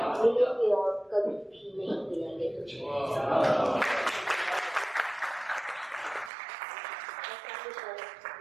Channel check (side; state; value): left; drops out; at 6.3 s